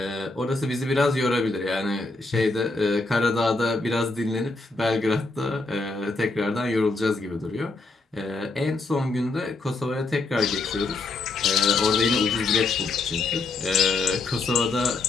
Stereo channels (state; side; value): quieter; right; 3.4 dB